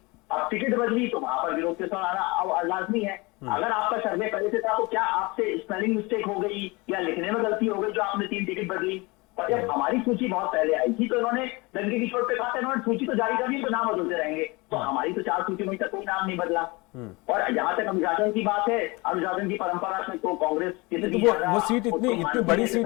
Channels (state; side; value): quieter; right; 25.2 dB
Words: अब टिकट बदली तो वहां पर विरोध के साथ आना अब लाजमी है। अगर आपका सर्वे पहले से था तो क्या आपसे स्पेलिंग मिस्टेक हो गई या लिखने में गलती हो गई जो आपने 3 टिकट बदली? और जब हमारी सूची बहुत पहले आई थी तो इन्होंने डंके की चोट पे कहा था इन्होंने सूची तो जारी कर दी तो नाम बदलते रहेंगे। तो हमारी तो 4 सूची में तक कोई नाम नहीं बदला। और जहां तक अनुशासन की बात है, अनुशासन की परंपरा से तो कांग्रेस वो सीट इतनी बड़ी